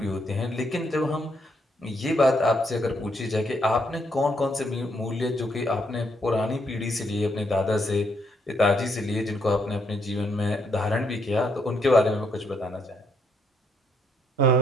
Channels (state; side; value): normal; both; correlation 0.74